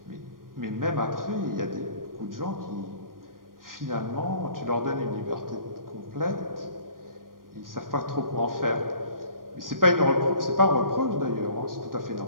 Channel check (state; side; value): late; left; 0.91 ms